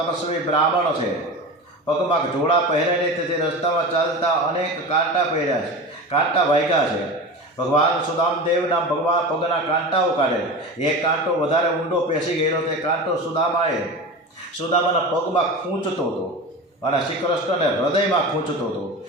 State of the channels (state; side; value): normal; both; correlation 0.29